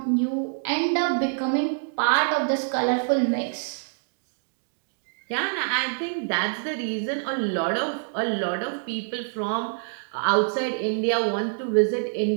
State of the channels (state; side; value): silent; left; digital silence